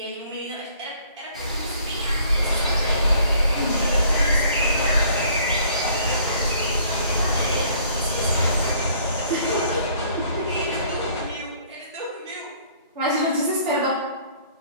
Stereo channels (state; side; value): inverted; both; correlation -0.58